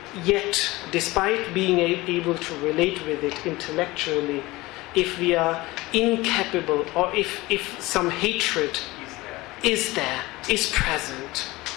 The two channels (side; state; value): right; quieter; 20.4 dB